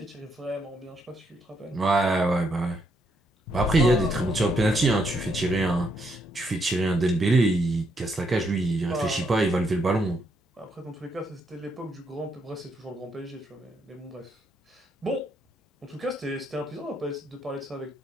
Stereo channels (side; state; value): both; normal; correlation 0.75